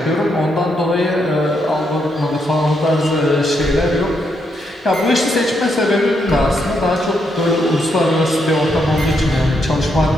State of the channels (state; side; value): normal; both; correlation 0.78